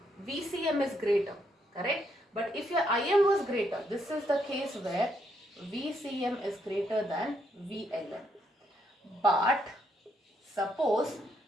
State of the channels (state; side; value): normal; both; correlation 0.75